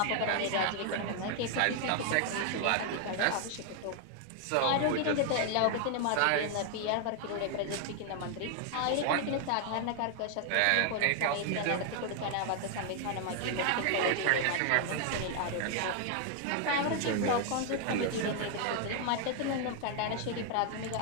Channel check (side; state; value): both; different; correlation 0.00